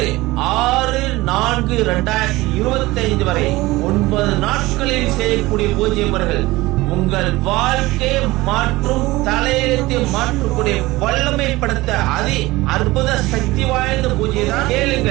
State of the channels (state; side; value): quieter; left; 19.8 dB